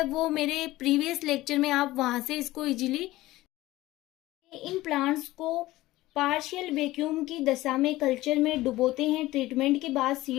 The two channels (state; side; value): quieter; right; 17.5 dB